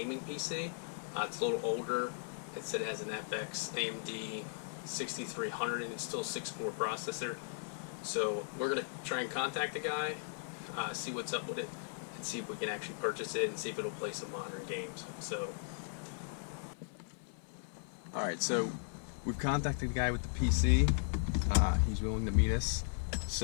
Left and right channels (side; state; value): right; silent; 53 dB below the other